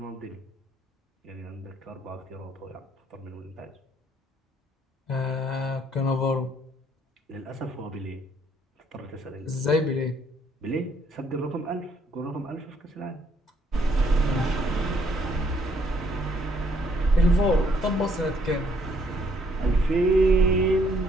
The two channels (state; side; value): normal; both; correlation 0.67